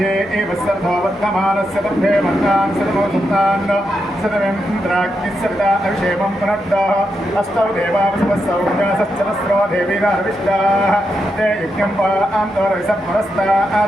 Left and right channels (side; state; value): both; normal; correlation 0.84